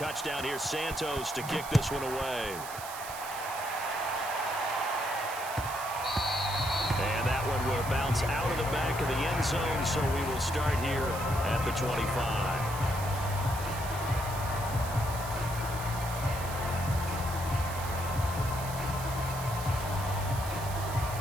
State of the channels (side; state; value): right; noise; hiss, 11 dB below the sound